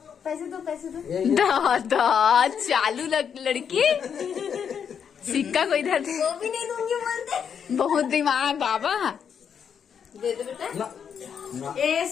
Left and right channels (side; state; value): right; quieter; 7.5 dB